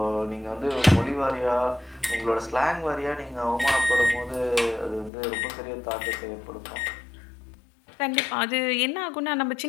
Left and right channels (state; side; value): drops out; right; at 5.1 s